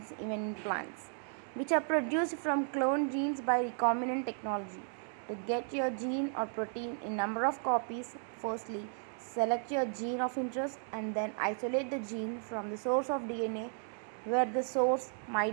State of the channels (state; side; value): silent; left; 55 dB below the other